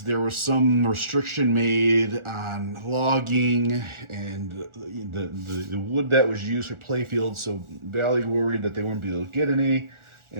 there was some restriction made on logging and the wood that was used for playfields. So Bally worried that they wouldn't be able to get any,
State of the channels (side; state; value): left; late; 1.4 ms